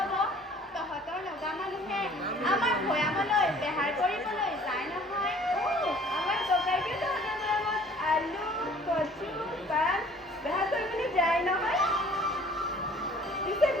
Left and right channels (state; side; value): normal; both; correlation 0.53